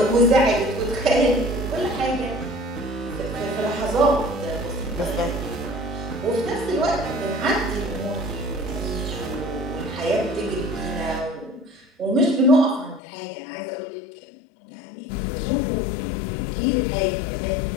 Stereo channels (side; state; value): right; drops out; at 13.0 s